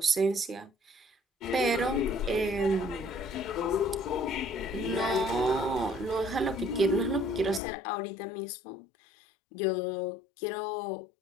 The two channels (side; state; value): right; drops out; at 7.6 s